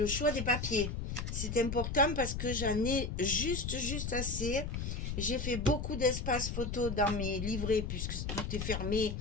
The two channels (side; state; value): left; noise; rumble, 3 dB below the sound